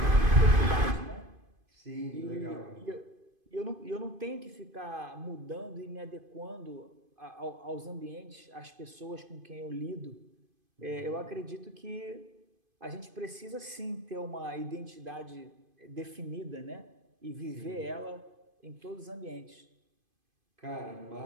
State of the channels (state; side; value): late; left; 2.5 ms